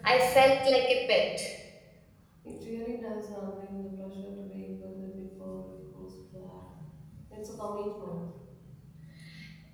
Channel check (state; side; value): identical; both; correlation 1.00